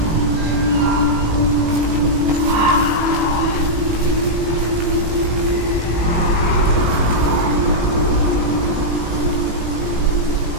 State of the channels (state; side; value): late; left; 19 ms